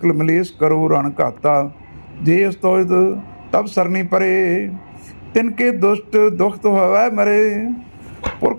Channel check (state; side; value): inverted; both; correlation -1.00